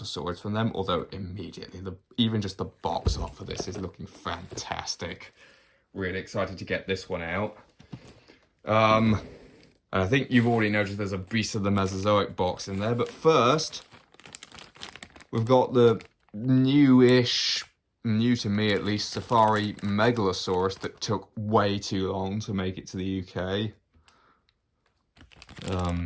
swords from them, although immediately, even just the box art for this is looking fantastic. Really excited to get this one out. And I think you've already noticed there's a Beast of the Mesozoic box in there, but first, we've got the new-ish, new to me at least, Safari Megalosaurus that took way too long to make it to the UK.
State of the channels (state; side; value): identical; both; correlation 1.00